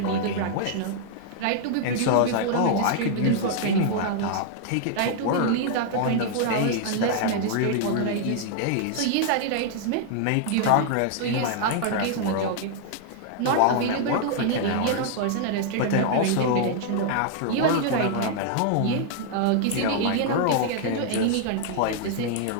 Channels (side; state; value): both; different; correlation 0.00